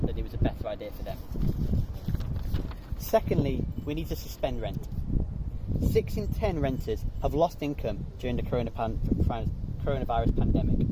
that it was a better idea for them. Secondly, we need to suspend rent. 6 in 10 renters have lost income during the coronavirus pandemic,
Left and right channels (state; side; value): identical; both; correlation 1.00